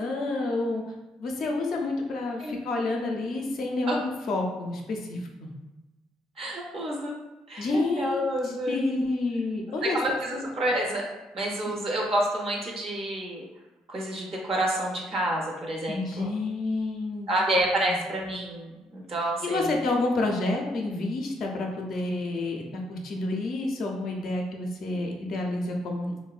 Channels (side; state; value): both; normal; correlation 0.73